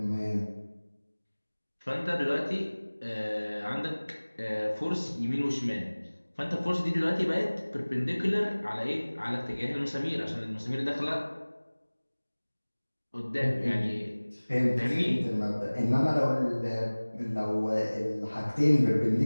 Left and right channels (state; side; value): inverted; both; correlation -1.00